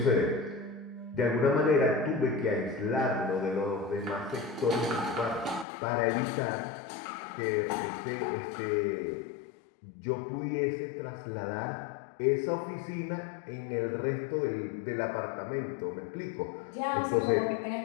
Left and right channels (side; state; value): right; drops out; at 5.7 s